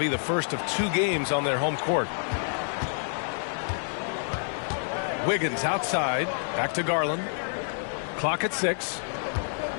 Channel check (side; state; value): right; silent; digital silence